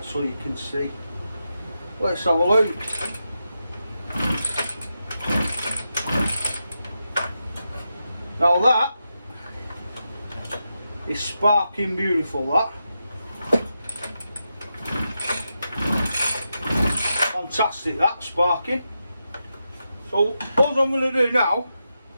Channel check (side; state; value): both; inverted; correlation -0.88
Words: so you can see. Let's have a look. Now that is sparking beautiful, that. Fantastic, that sparking. So all I'm going to do now